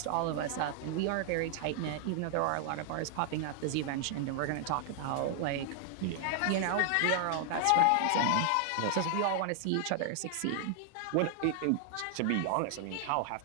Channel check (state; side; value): different; both; correlation 0.00